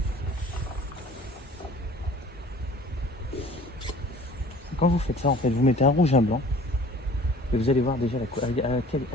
Quand vous faites ça, en fait, vous mettez un rouge et un blanc, et vous allez voir déjà avec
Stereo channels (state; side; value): normal; both; correlation 0.48